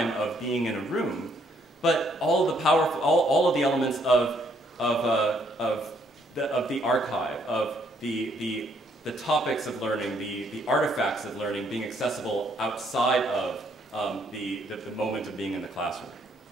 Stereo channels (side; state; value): both; normal; correlation 0.69